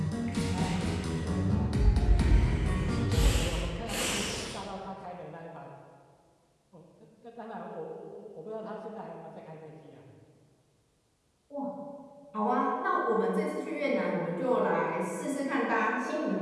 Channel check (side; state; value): both; identical; correlation 1.00